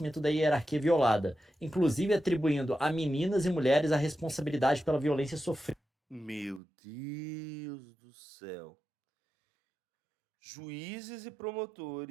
da hierarquia violada, inclusive atribuindo a meninas e mulheres a responsabilidade pela violência sofrida. Meu Deus do céu. Juízes e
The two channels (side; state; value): left; drops out; at 6.6 s